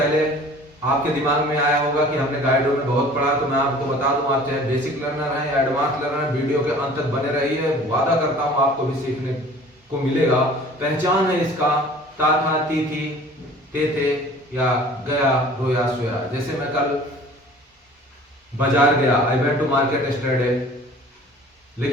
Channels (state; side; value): normal; both; correlation 0.47